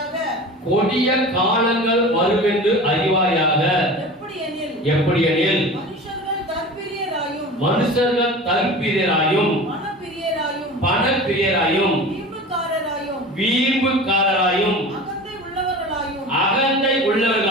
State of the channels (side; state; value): both; normal; correlation 0.36